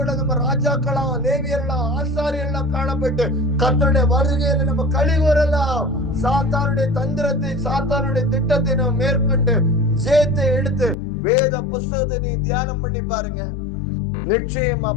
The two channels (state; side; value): drops out; right; at 11.0 s